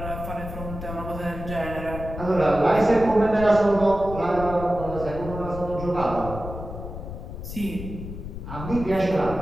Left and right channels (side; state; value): left; noise; rumble, 9 dB below the sound